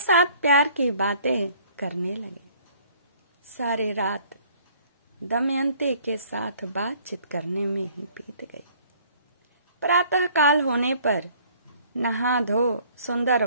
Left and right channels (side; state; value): both; inverted; correlation -0.57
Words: प्यार की बातें करने लगे। सारी रात दमयंती के साथ बातचीत करने में ही बीत गई। प्रातः काल होने पर नहा धो सुंदर